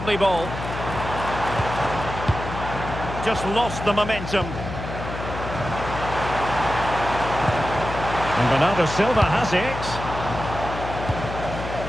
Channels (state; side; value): noise; left; hum, 8 dB below the sound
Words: ball. Just lost the momentum. And Bernardo Silva has it.